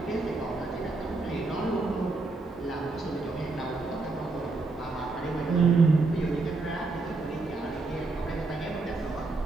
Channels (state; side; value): quieter; left; 3.5 dB